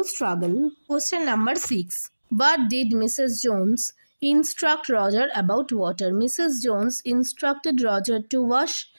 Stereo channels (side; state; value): both; inverted; correlation -1.00